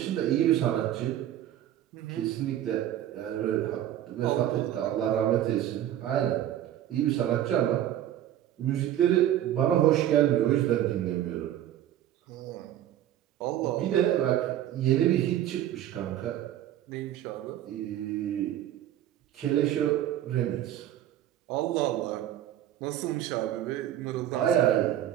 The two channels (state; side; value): quieter; left; 12.0 dB